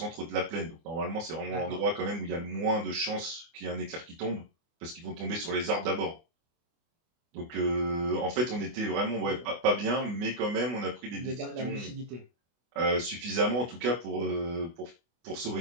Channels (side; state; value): left; late; 24 ms